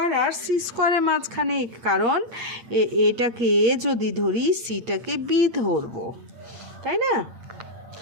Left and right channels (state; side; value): late; left; 8.8 ms